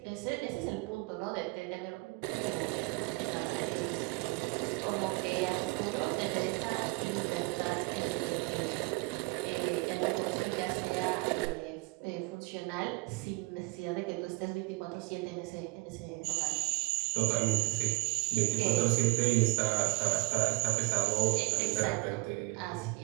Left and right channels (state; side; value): quieter; left; 25.8 dB